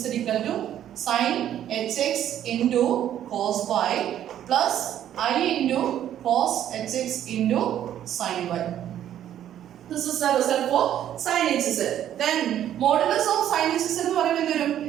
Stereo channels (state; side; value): quieter; left; 11.0 dB